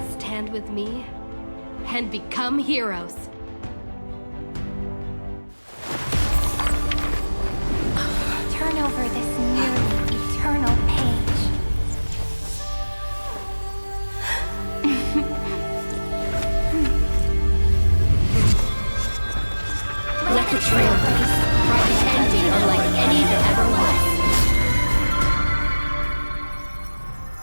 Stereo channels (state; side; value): inverted; both; correlation -1.00